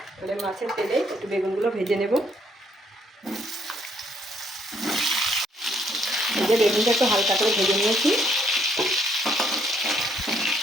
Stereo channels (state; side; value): normal; both; correlation 0.68